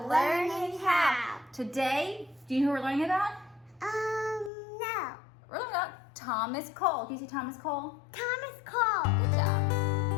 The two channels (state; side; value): drops out; right; at 4.5 s